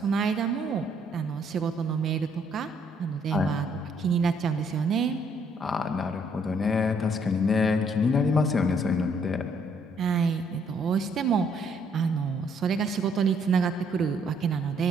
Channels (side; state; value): both; normal; correlation 0.68